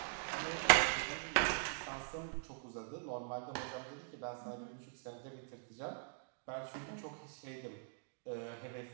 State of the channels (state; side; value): silent; left; digital silence